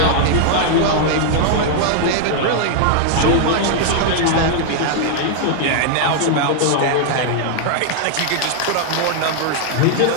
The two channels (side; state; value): both; different; correlation 0.00